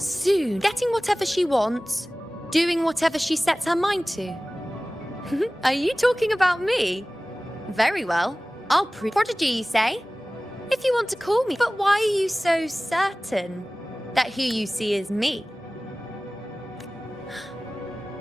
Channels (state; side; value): normal; both; correlation 0.98